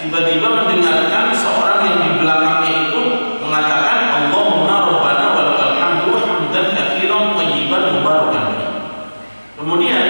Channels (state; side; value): inverted; both; correlation -1.00